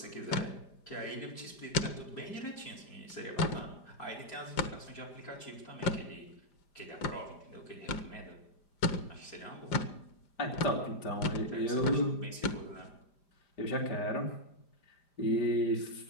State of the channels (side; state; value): right; late; 5.0 ms